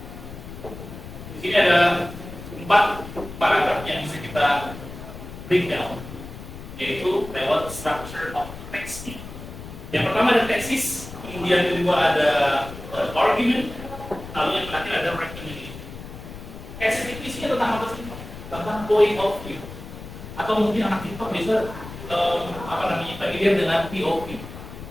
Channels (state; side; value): noise; left; rumble, 13 dB below the sound